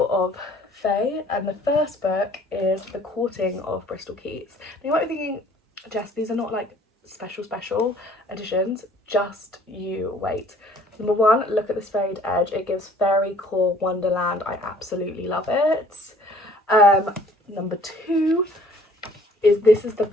of fae. And the first book is The Courting of Bristol Keats. Now you might be thinking, Jess, these are not like special editions, just you wait. Number 1, look at this frayed edge. It gives fairy core wonderland. I absolutely love it. Number 2 is, this is the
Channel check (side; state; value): both; normal; correlation 0.55